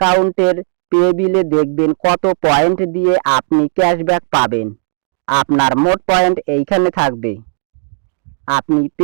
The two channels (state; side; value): silent; left; digital silence